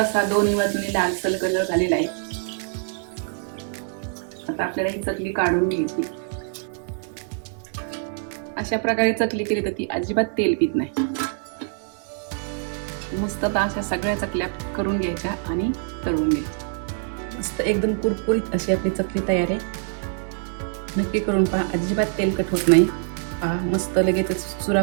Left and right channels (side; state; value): left; silent; 62 dB below the other